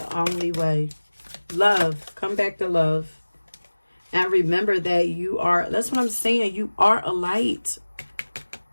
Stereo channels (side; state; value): both; inverted; correlation -1.00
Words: only way. Love. Come back to love. And remember that you are, that's what I'm saying, you are a light.